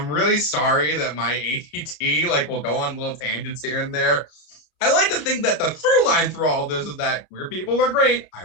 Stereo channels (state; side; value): late; right; 33 ms